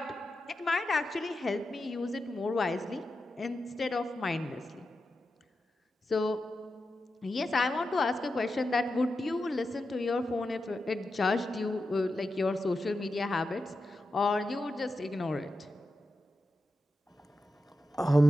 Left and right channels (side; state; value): both; normal; correlation 0.90